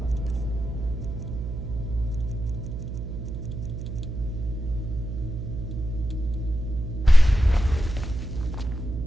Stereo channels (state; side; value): noise; right; hum, 6 dB below the sound